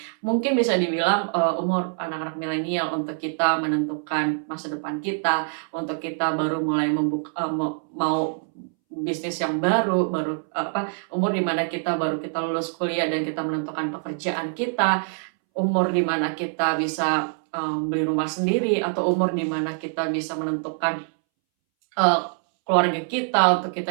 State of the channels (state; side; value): silent; left; 62 dB below the other